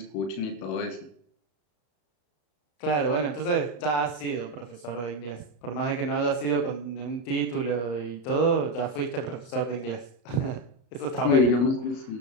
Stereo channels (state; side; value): late; right; 34 ms